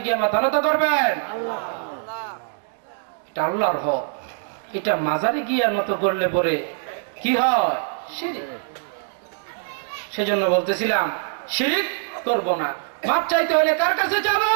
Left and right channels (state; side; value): silent; left; digital silence